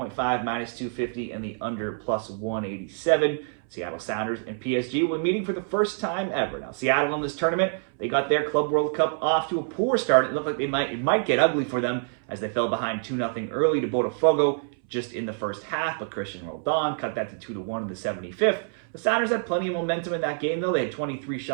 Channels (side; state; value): left; silent; 61 dB below the other